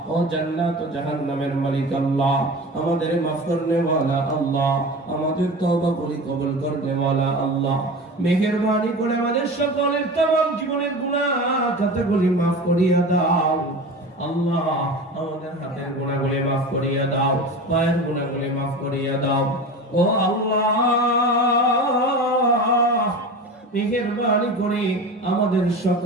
ও জান্নাত ও জাহান্নামের মালিক আল্লাহ, আমাদের মাফ করনে ওয়ালা আল্লাহ, আমাদের তওবা কবুল করনে ওয়ালা আল্লাহ, মেহেরবানি করে আমাদের সকলের तमाम জীবনের গুনাহ খাতাগুলি মাফ করিয়া দাও আল্লাহ। আমাদের হাতের গুনাহগুলি মাফ করিয়া দাও, পায়ের গুনাহগুলি মাফ করিয়া দাও ও আল্লাহ। মেহেরবানি করে আমাদের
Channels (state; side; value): normal; both; correlation 0.32